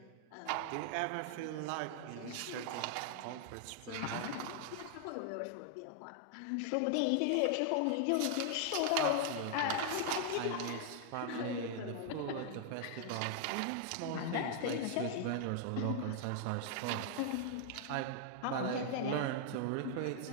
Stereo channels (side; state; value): both; different; correlation 0.00